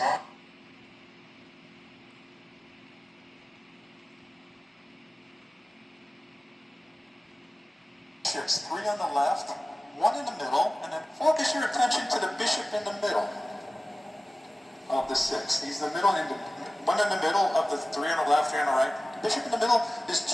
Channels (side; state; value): both; normal; correlation 0.96